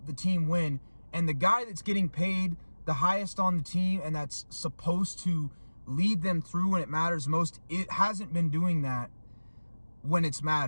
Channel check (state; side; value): inverted; both; correlation -1.00